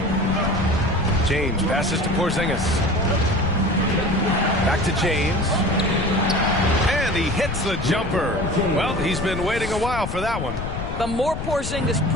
James passes to Porzingis. Back to James. And he hits the jumper. Well, he's been waiting a while for that one. The more Porzingis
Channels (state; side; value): noise; left; rumble, 6 dB below the sound